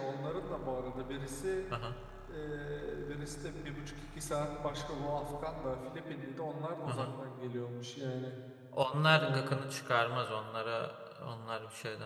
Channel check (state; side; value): identical; both; correlation 1.00